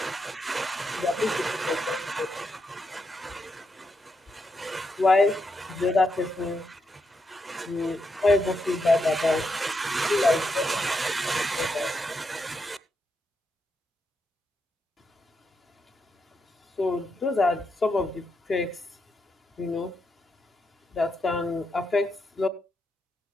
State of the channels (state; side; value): normal; both; correlation 0.82